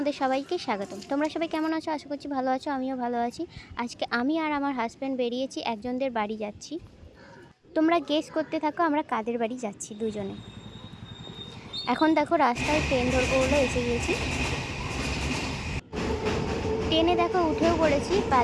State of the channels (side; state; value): both; identical; correlation 1.00